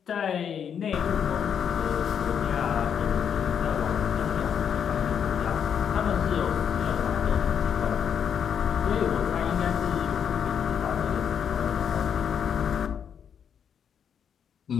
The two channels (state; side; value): quieter; right; 7.9 dB